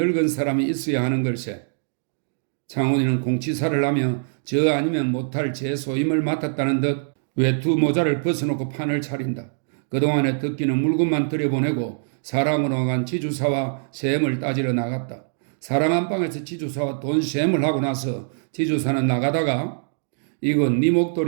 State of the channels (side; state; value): left; silent; digital silence